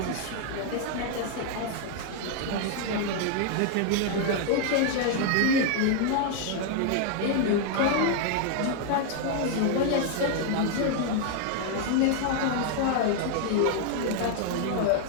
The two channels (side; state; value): both; different; correlation 0.00